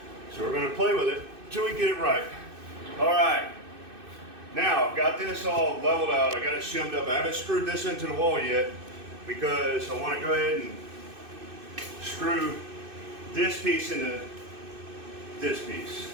So we're going to play with it until we get it right. All right. Now I've got this all leveled out. I got it shimmed up. I haven't screwed this into the wall yet because I want to go ahead and screw this piece into this piece.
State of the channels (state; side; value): late; left; 2.6 ms